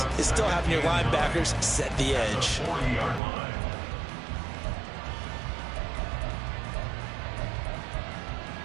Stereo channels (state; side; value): drops out; left; at 3.2 s